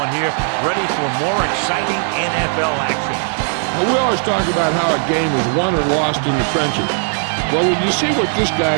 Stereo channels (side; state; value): left; silent; 61 dB below the other